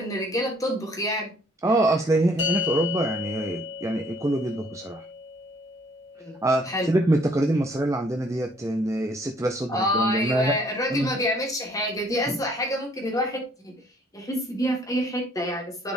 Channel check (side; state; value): both; normal; correlation 0.62